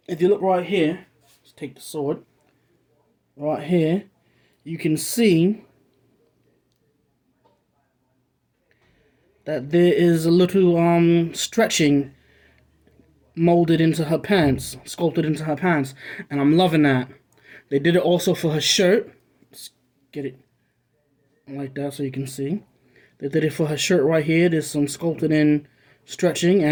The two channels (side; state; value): both; identical; correlation 1.00